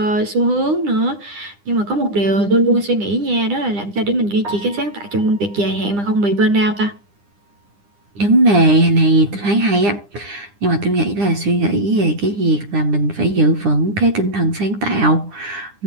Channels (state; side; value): late; left; 9.9 ms